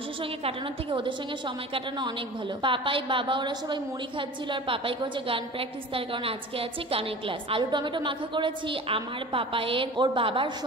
সঙ্গে কাটানোর থেকে ওদের সঙ্গে সময় কাটানো অনেক ভালো। পাপাই বাবা ওরা সবাই মুড়ি খাচ্ছিল, আর পাপাই করছে গান প্র্যাকটিস, তার কারণ আজকে আছে গানের ক্লাস। আলু টমেটো মাখা করেছি, আমার পাপায়ের ওর বাবার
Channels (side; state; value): both; normal; correlation 0.38